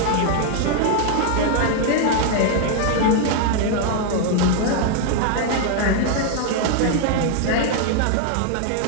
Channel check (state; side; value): different; both; correlation 0.00